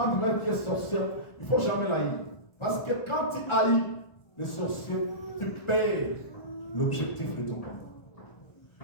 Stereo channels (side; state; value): right; late; 1.4 ms